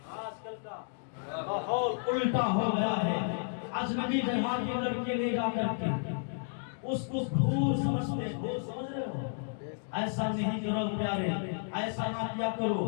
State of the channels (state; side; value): silent; right; digital silence